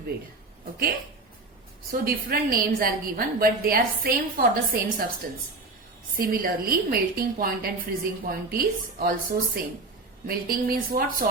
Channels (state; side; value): quieter; left; 3.3 dB